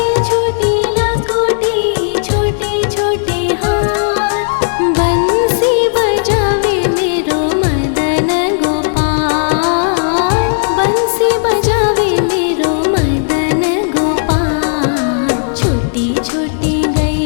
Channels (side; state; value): right; silent; digital silence